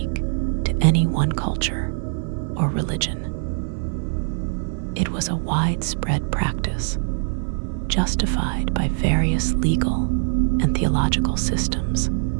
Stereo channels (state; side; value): silent; left; 59 dB below the other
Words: to any one culture or religion. It was a widespread practice, justified by various legal and theological systems.